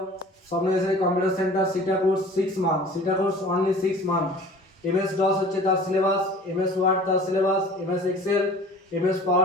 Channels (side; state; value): both; normal; correlation 0.45